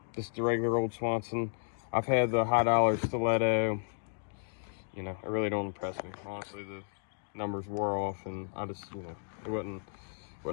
This is the regular old Swanson. I've had the high dollar stiletto. You know, it really don't impress me. Honestly, the numbers wore off, and I just, you know, it wasn't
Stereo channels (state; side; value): silent; right; digital silence